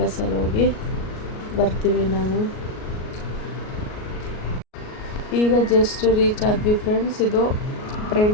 ಹೋಗಿ ಬರ್ತೀವಿ ನಾವು. ಈಗ ಜಸ್ಟ್ ರೀಚ್ ಆದ್ವಿ ಫ್ರೆಂಡ್ಸ್. ಇದು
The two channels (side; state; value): right; late; 38 ms